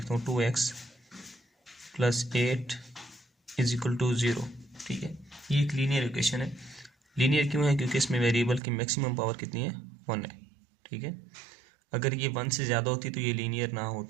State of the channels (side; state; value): left; drops out; at 8.6 s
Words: हूँ 2x + 8 = 0। ठीक है, ये एक लीनियर इक्वेशन है। लीनियर क्यों है? क्योंकि इसमें वेरिएबल की मैक्सिमम पावर कितनी है? 1 है। ठीक है, अगर ये 1 से ज़्यादा होती तो ये लीनियर ना